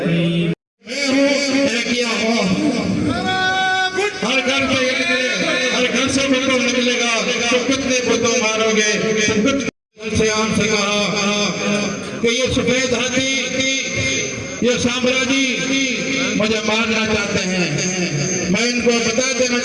हर घर से भुट्टो निकलेगा तो कितने भुट्टो मारोगे से आम से कहा कि ये सफेद हाथी ये साम्राज्य मुझे मारना चाहते हैं। मैं इनको बता देना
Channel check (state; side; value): identical; both; correlation 1.00